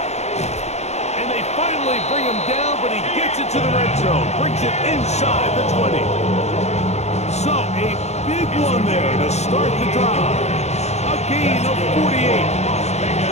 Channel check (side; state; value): right; late; 0.32 ms